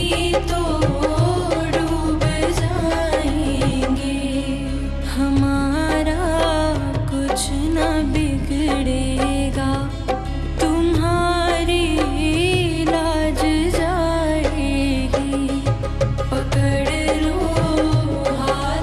तो डूब जाएंगे। हमारा कुछ न बिगड़ेगा, तुम्हारी लाज जाएगी। पकड़ लो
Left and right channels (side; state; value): both; identical; correlation 1.00